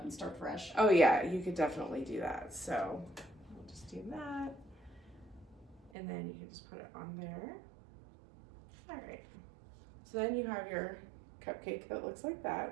and start fresh. Oh yeah, you could definitely do that. So we'll just do that. And then you can just put it on there. All right. So then you have your cupcake that looks like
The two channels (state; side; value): drops out; left; at 5.9 s